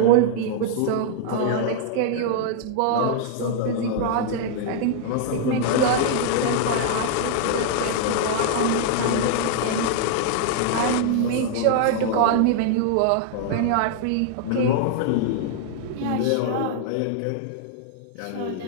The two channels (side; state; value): both; different; correlation -0.01